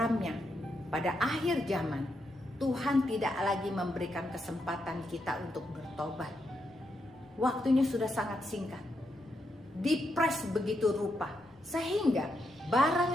pada akhir zaman Tuhan tidak lagi memberikan kesempatan kita untuk bertobat. Waktunya sudah sangat singkat, dipres begitu rupa, sehingga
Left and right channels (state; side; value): noise; left; rumble, 29 dB below the sound